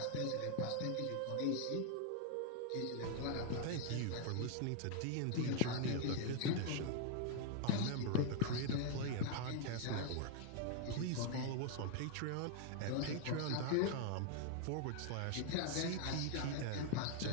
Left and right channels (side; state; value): both; different; correlation 0.00